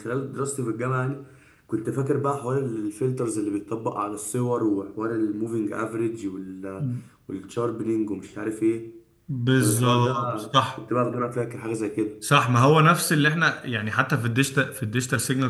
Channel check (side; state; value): both; identical; correlation 1.00